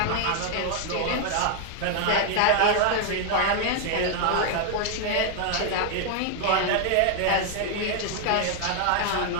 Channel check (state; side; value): different; both; correlation 0.00